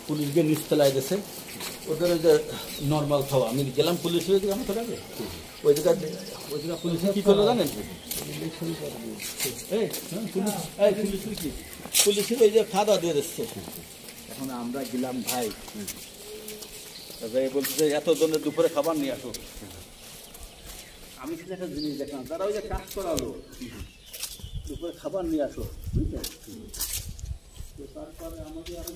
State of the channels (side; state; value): both; identical; correlation 1.00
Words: পুলিশ গিয়ে নিচতলায় গেছে ওদের ওই যে নর্মাল খাওয়া। আমি গেলাম পুলিশ হয়ে গেলাম তো আগে ওই জায়গায় পুলিশে কী করলো জানেন? পুলিশের ওই যে খাওয়া দাওয়া দিয়ে দিচ্ছে। এখন আমরা গেলাম ভাই, বলছে যে এত জনের দুপুরে খাবার নিয়ে আসো। আমি কিন্তু একটা জিনিস দেখলাম, তারা ওই যে কাজ করালো দুপুরে খাবার নিয়ে আসো, বুঝলেন? তারপরে আমাদের আরো